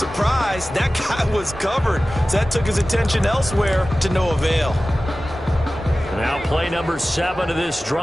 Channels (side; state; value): both; normal; correlation 0.96